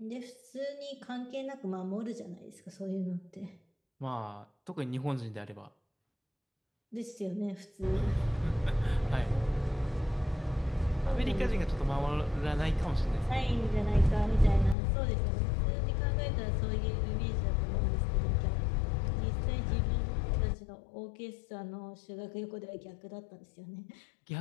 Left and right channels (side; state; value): right; drops out; at 14.8 s